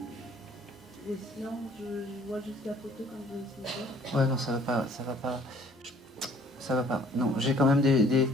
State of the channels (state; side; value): normal; both; correlation 0.57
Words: Et sinon, je vois juste la photo quand je vais essayer de voir. Ouais, non, ça va pas, ça va pas. Non, j'ai quand même des